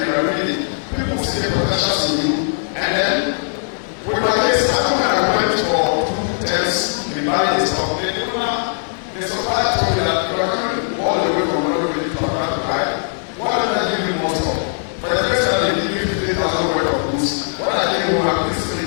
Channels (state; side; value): silent; right; digital silence